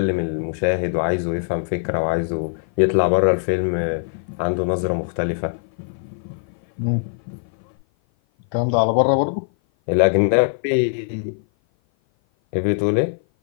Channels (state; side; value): silent; right; 56 dB below the other